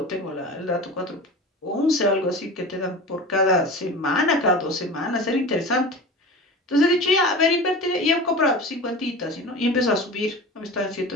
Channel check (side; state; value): both; normal; correlation 0.33